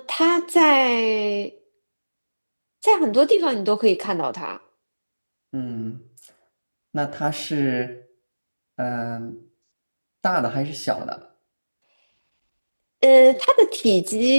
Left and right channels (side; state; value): both; inverted; correlation -1.00